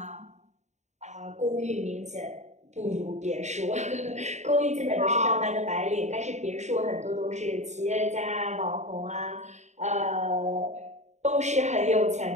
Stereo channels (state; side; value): late; left; 0.33 ms